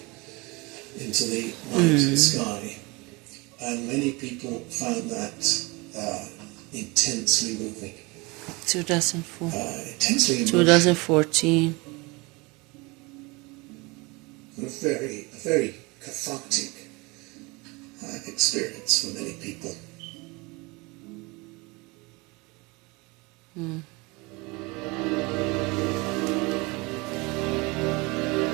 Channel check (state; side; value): quieter; left; 25.7 dB